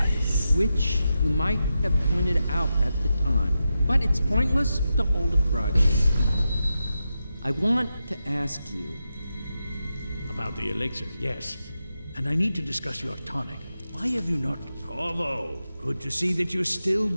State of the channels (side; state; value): both; inverted; correlation -0.89